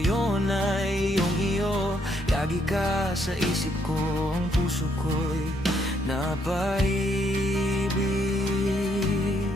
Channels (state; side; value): normal; both; correlation 0.72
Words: ay iyong-iyo. Lagi ka sa isip ko, ang puso ko'y napaibig.